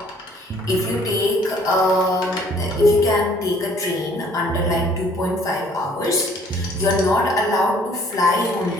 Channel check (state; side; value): normal; both; correlation 0.58